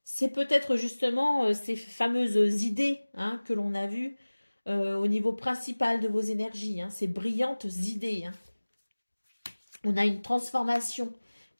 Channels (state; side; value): inverted; both; correlation -1.00